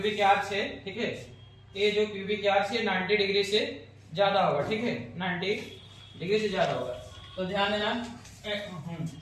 आर्च है, ठीक है, ये जो प्यूबिक आर्च है 90 डिग्री से ज्यादा होगा। ठीक है, 90 डिग्री से ज्यादा होगा। तो ध्यान देना।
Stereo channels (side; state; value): both; identical; correlation 1.00